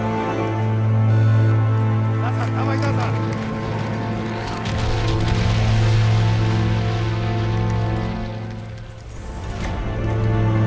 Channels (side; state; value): both; identical; correlation 1.00